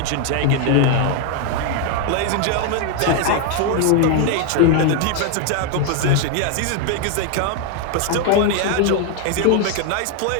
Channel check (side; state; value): both; different; correlation 0.01